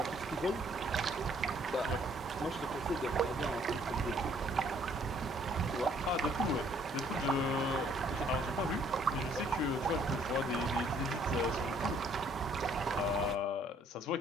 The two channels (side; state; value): both; normal; correlation 0.63